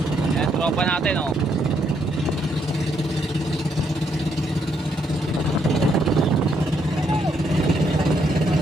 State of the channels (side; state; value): both; normal; correlation 0.74